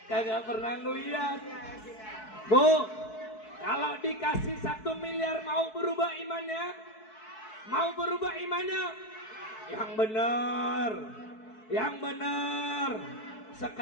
Kagak pernah ngeliat. Bu, kalau dikasih 1 miliar mau berubah imannya? Mau berubah imannya? Yang benar. Yang benar.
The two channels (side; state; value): right; late; 4.6 ms